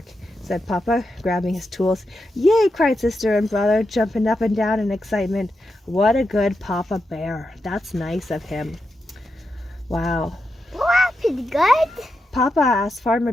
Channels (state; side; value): normal; both; correlation 0.87